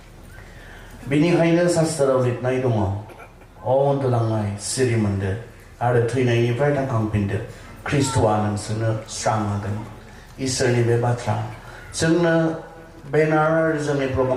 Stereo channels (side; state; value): both; identical; correlation 1.00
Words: बेनिखायनो शास्त्राव लिरनाय दङ, अ उन्दुलांनाय सिरि मोनदो आरो थैनायनिफ्राय थांखांफिनदो, ख्रिस्ट'आ नोंसोरनो स्रां होगोन। इसोरनि बे बाथ्रा जोंनो बेनार जोंनि